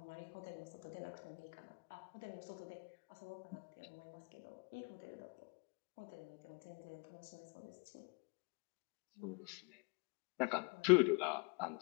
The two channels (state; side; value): quieter; right; 31.8 dB